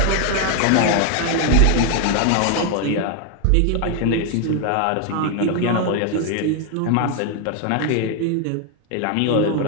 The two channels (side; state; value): both; different; correlation 0.01